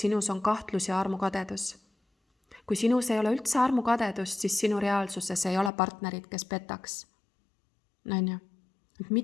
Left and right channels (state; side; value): drops out; right; at 5.7 s